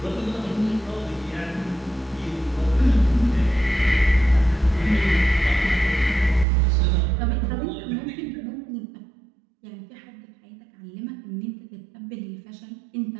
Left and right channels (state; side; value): drops out; left; at 6.5 s